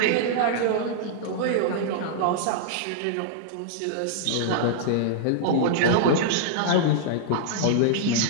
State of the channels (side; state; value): both; different; correlation -0.01